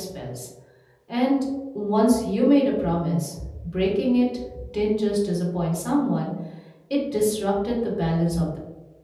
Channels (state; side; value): identical; both; correlation 1.00